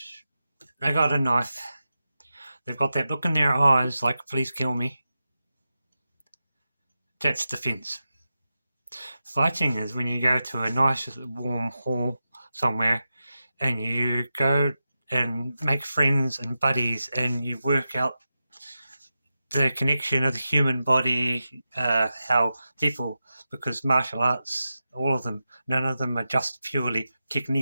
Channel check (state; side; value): inverted; both; correlation -0.91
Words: they got a knife. They've got that look in their eyes like, please kill me. That's defense. Fighting is when you go to a nice warm hall somewhere and you go and make friends and buddies and you work out the connection of the human body, how people, because martial arts, all of them, none of them are just purely